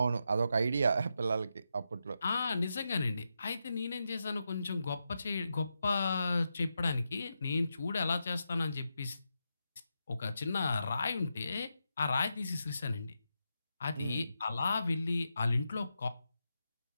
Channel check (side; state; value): both; inverted; correlation -0.86